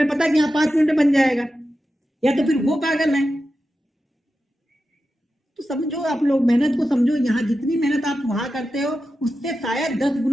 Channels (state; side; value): normal; both; correlation 0.91